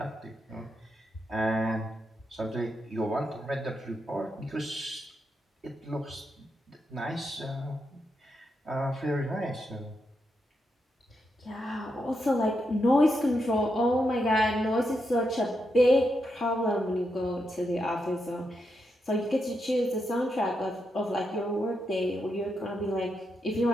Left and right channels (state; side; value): normal; both; correlation 0.83